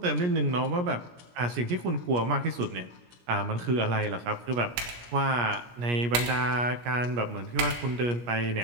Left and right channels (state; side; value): late; left; 17 ms